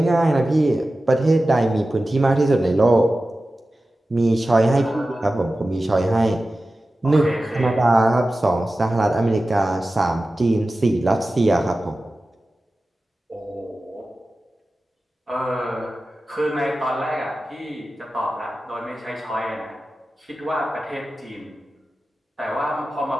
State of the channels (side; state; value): both; normal; correlation 0.95